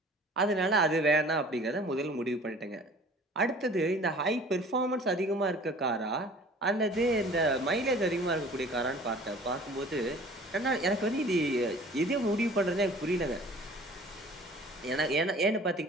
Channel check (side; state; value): both; normal; correlation 0.48